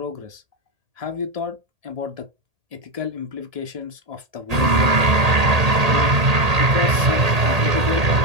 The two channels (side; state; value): left; late; 1.8 ms